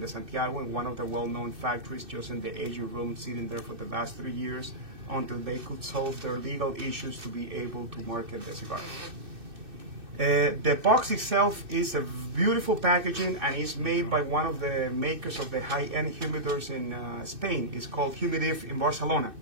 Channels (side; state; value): left; late; 2.6 ms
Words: Santiago, in one of the well-known factories, just in the aging room, sitting there for the last 3 years until they could solve their legal issues to be able to market the cigar. The box itself is a beautiful packaging, and is made by one of the makers of the high-end humidors in Spain. It's called Humidif in Barcelona.